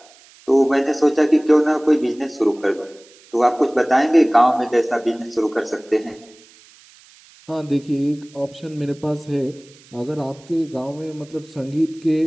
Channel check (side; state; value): right; noise; hiss, 26 dB below the sound